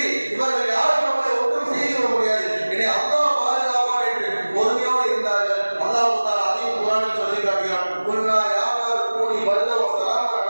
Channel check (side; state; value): both; inverted; correlation -1.00